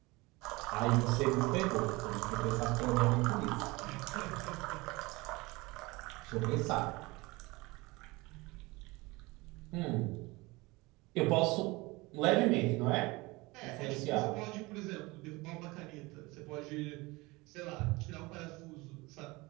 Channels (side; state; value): left; quieter; 23.2 dB